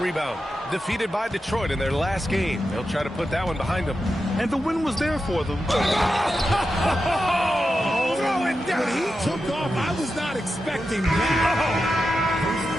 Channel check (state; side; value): normal; both; correlation 0.90